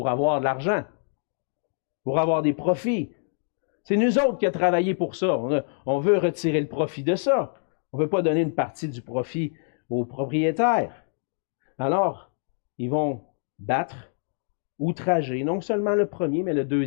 avoir de l'argent, pour avoir des profits. C'est nous autres qui avons travaillé pour ça. On veut retirer le profit de ça. On ne veut pas donner une partie du profit aux propriétaires. Alors, ils vont battre, outrager, non seulement le premier, mais le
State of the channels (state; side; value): silent; right; 61 dB below the other